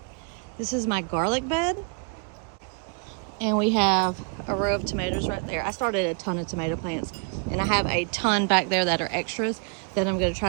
This is my garlic bed. And we have a row of tomatoes right there. I started a ton of tomato plants, and I have a ton back there that are extras that I'm going to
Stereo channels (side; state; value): left; quieter; 36.7 dB